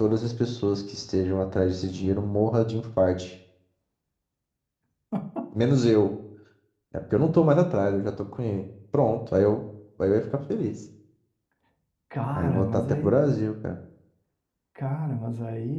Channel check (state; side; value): identical; both; correlation 1.00